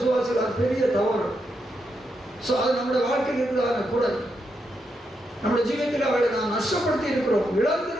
அது பெரிய தவறு. ஸோ அது நம்முடைய வாழ்க்கையில் இருக்கிறதான கூட நம்முடைய ஜீவத்தில் அவளை நாம் நஷ்டப்படுத்தி இருக்கிறோம்,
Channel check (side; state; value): both; normal; correlation 0.82